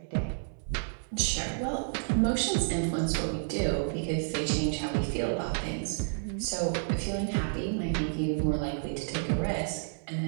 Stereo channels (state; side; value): silent; left; digital silence